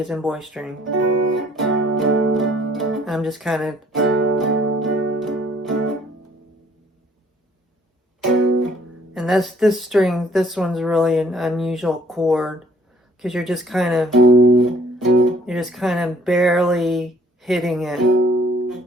in boy string. I'm just kind of... And this string, this one's really an unusual chord, because you're just kind of barely hitting it.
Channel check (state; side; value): normal; both; correlation 0.60